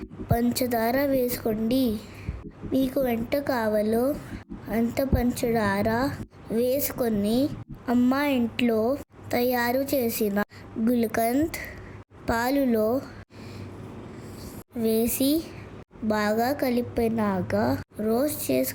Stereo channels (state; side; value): identical; both; correlation 1.00